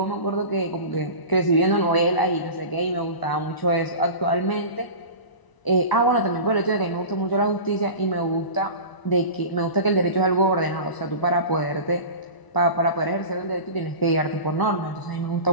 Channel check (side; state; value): right; late; 1.0 ms